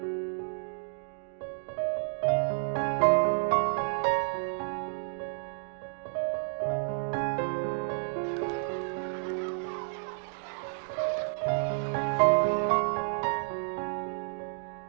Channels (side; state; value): left; silent; digital silence